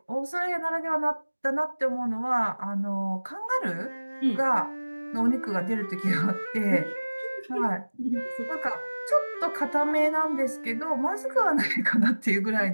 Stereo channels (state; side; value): inverted; both; correlation -1.00